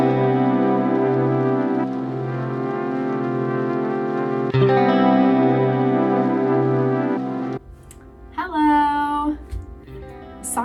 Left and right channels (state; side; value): identical; both; correlation 1.00